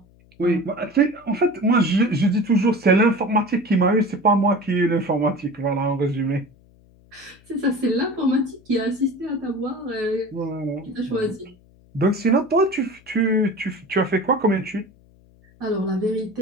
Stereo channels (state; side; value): noise; left; hum, 28 dB below the sound